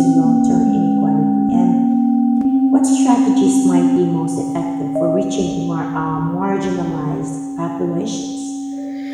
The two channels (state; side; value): identical; both; correlation 1.00